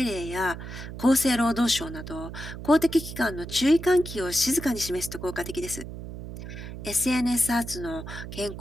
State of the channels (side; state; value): right; noise; hum, 10 dB below the sound